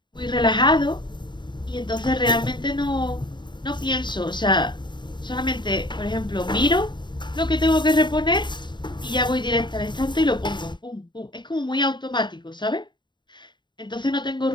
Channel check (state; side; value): late; right; 0.22 ms